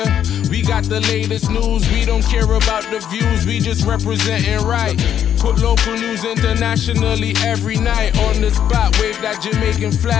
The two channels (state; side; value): quieter; right; 9.6 dB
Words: we got the latest news. We don't care about the views, we just representing right. Put local news internationally every night. On the spot, wave that Jamaican